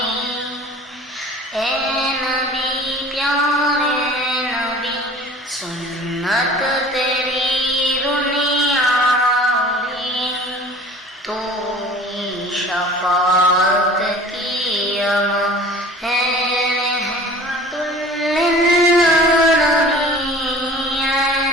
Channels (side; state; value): both; normal; correlation 0.44